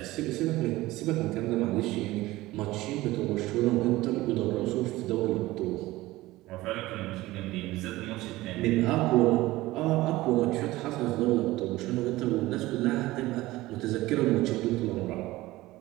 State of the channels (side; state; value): left; quieter; 18.2 dB